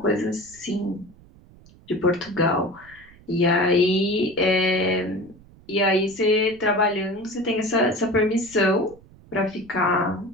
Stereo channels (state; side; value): noise; right; rumble, 25 dB below the sound